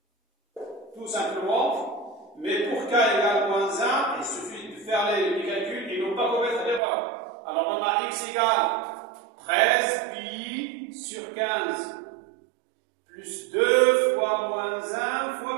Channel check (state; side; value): drops out; left; at 6.8 s